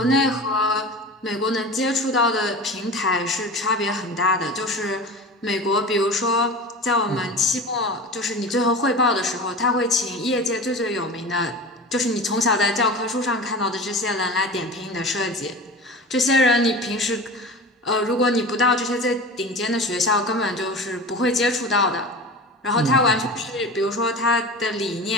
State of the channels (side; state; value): both; normal; correlation 0.33